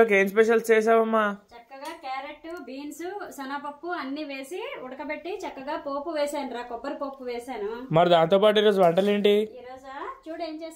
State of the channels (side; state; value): both; identical; correlation 1.00